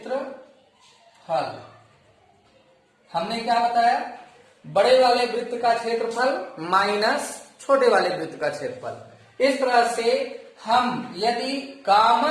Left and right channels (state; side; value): identical; both; correlation 1.00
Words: हमने क्या बताया, बड़े वाले वृत्त का क्षेत्रफल माइनस छोटे वाले वृत्त का क्षेत्रफल। इस तरह से हम यदि